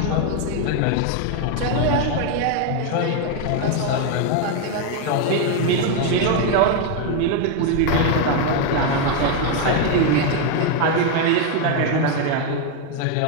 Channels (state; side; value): different; both; correlation 0.01